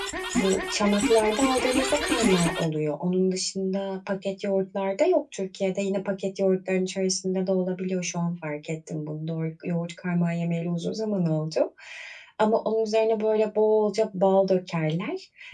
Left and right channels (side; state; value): both; identical; correlation 1.00